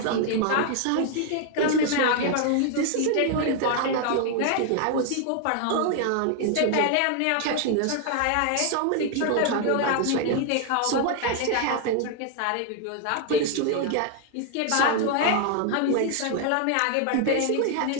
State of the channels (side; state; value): both; different; correlation 0.00